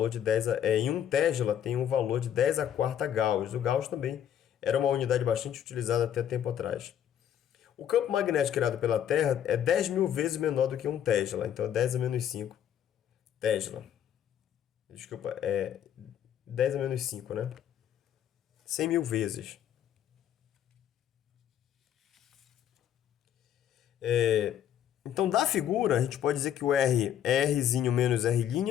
de 10 em 1 Tesla tem um valor de 10 a quarta Gauss. O Gauss também era uma unidade bastante utilizada até tempo atrás. O campo magnético criado pela Terra é 10.000 vezes menor do que 1 Tesla. Então, é 10 a menos 5 Tesla. Desculpa, 10 a menos 5, né? 100.000 vezes. Então, da figura, a gente pode dizer que o R é Rzinho menos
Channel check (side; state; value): right; quieter; 10.0 dB